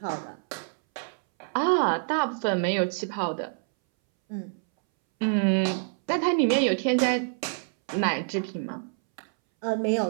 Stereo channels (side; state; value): left; silent; 60 dB below the other